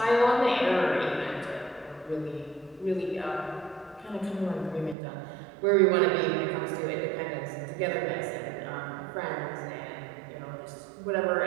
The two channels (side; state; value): left; drops out; at 5.0 s